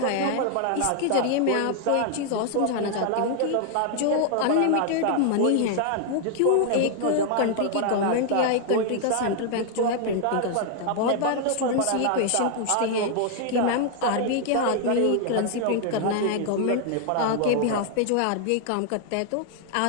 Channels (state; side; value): different; both; correlation 0.00